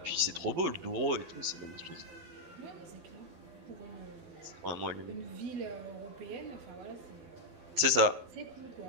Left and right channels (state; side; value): late; left; 11 ms